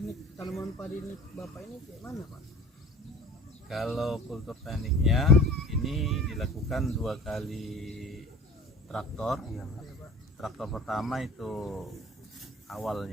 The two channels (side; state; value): both; normal; correlation 0.42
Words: tanaman padi ini Bapak ini kayak mana, Pak? Kalau kultur tekniknya ini dilakukan 2 kali traktor. Traktor pertama itu